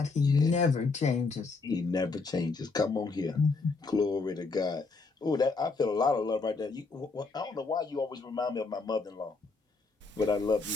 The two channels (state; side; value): quieter; right; 4.1 dB